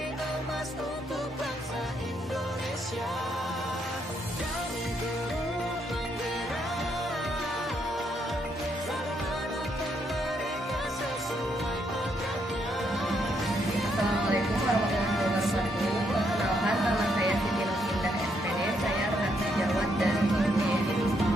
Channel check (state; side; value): normal; both; correlation 0.75